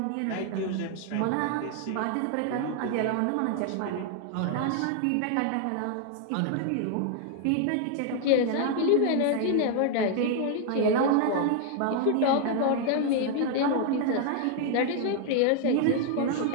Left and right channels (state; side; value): different; both; correlation 0.00